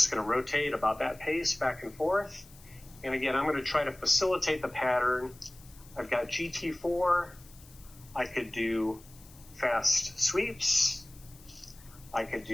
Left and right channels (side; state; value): left; noise; hiss, 23 dB below the sound